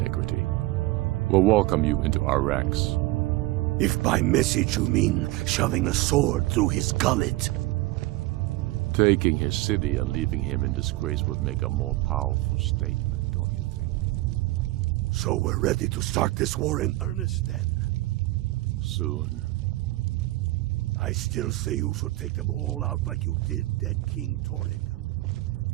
we'll welcome you into our ranks. If by message you mean shoving a sword through his gullet. Taking his city and leaving him in disgrace would make a more powerful statement, don't you think? So we're ready to start this war in earnest then? Soon. I still say you should take them all out like you did dead King Torrig.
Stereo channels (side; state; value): left; quieter; 19.2 dB